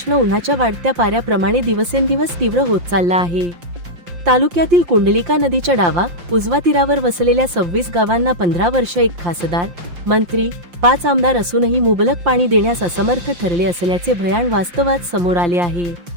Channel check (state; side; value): late; left; 5.7 ms